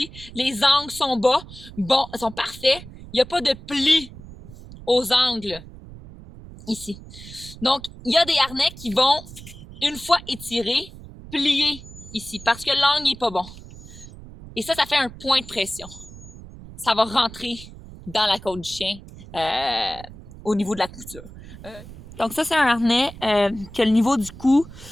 Les angles sont bas, bon, sont parfaits. Il n'y a pas de plis aux angles ici. Donc, il y a des harnais qui vont, une fois étirés, plier ici parce que l'angle n'est pas bon. Et ça fait un point de pression. Ça va rentrer dans la côte du chien au niveau de la couture. Donc ça, c'est un harnais que le niveau du cou,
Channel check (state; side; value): noise; right; rumble, 16 dB below the sound